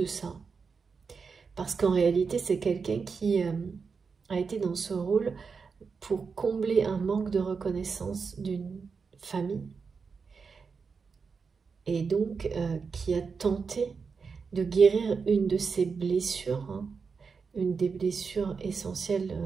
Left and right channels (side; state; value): left; quieter; 5.3 dB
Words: ça. Parce qu'en réalité, c'est quelqu'un qui a été dans ce rôle pour combler un manque de reconnaissance d'une famille. Et donc, qui a tenté de guérir une de ses blessures, hein, une des blessures essentielles